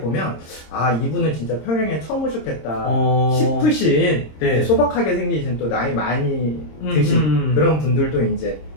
이분은 진짜 평양에 처음 오셨겠다 싶으신 소박하게 생기신 또 나이 많이 드신 그런 분들도 이제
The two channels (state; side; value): late; right; 26 ms